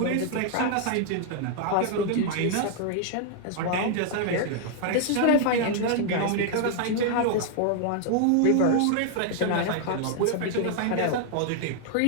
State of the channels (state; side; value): different; both; correlation 0.00